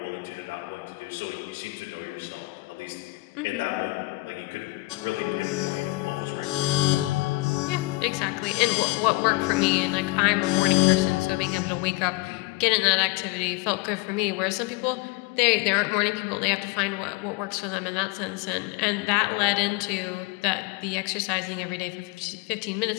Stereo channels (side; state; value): right; quieter; 22.0 dB